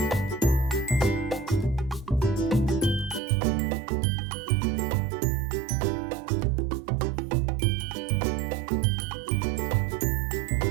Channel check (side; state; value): left; drops out; at 3.2 s